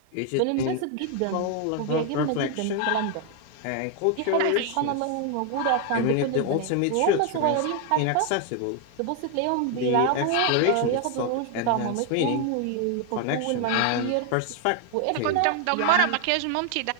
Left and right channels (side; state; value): both; different; correlation 0.01